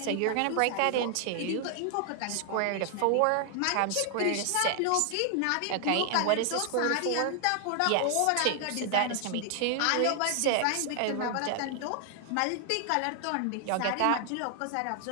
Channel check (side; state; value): both; different; correlation 0.00